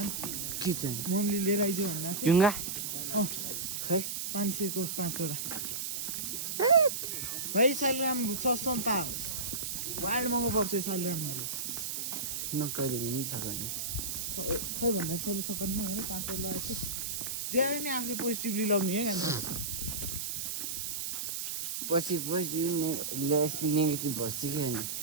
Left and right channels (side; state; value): right; noise; hiss, 3 dB below the sound